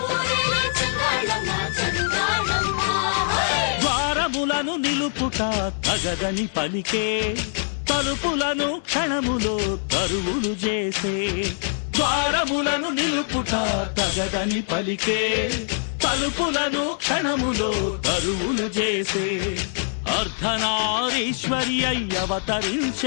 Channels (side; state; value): right; silent; 62 dB below the other